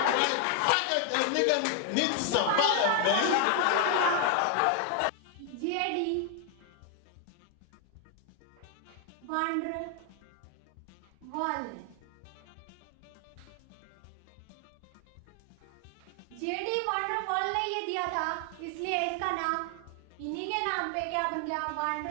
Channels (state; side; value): different; both; correlation 0.00